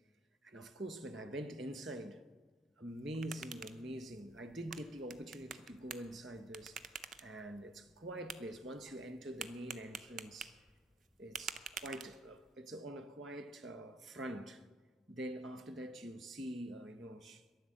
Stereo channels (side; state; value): both; normal; correlation 0.66